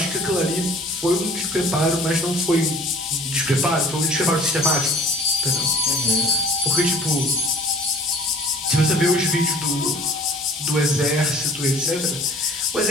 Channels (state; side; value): normal; both; correlation 0.50